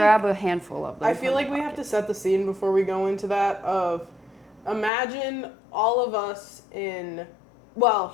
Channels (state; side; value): drops out; right; at 4.9 s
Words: a handful of them. I feel like we have to set the scene before we go into that of imagine all of us